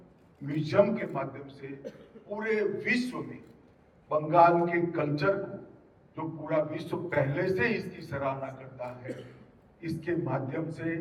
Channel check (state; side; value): identical; both; correlation 1.00